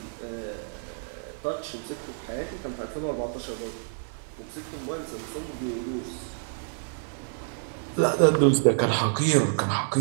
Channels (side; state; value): left; silent; digital silence